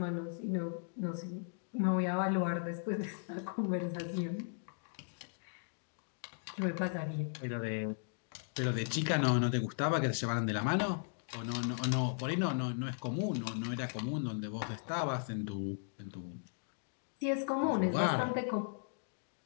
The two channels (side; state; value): right; silent; digital silence